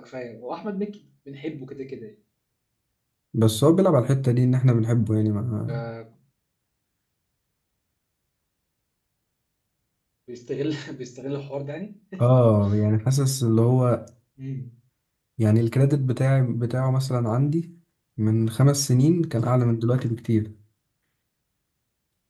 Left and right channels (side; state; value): both; identical; correlation 1.00